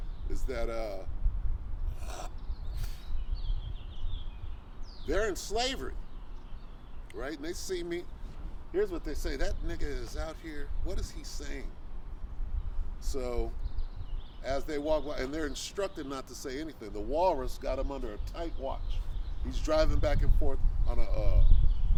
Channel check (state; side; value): identical; both; correlation 1.00